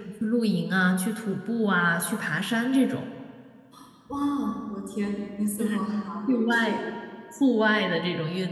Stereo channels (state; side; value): identical; both; correlation 1.00